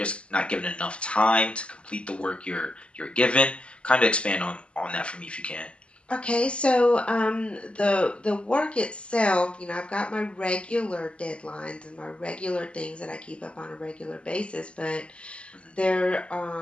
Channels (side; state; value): right; late; 0.055 ms